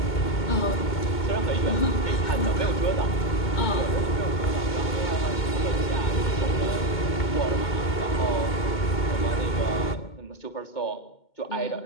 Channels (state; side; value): late; right; 2.2 ms